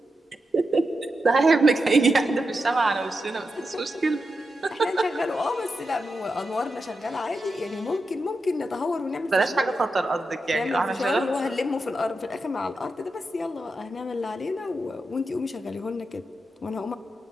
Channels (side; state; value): both; normal; correlation 0.88